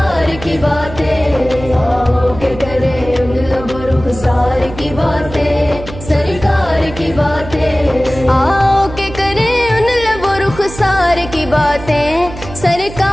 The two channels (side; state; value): right; noise; hum, 13 dB below the sound